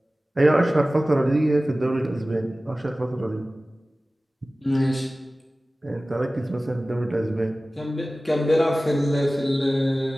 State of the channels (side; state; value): both; normal; correlation 0.97